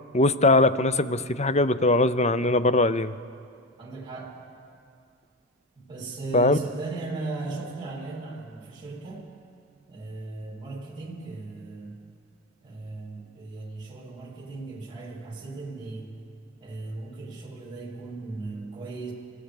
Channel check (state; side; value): normal; both; correlation 0.19